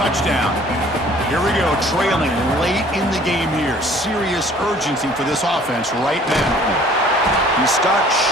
Here we go, trailing late in the game here. Serious urgency for this offense right now. He stopped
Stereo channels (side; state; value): both; normal; correlation 0.54